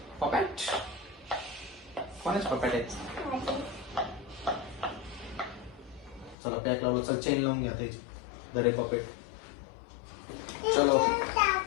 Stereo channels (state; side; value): drops out; right; at 6.4 s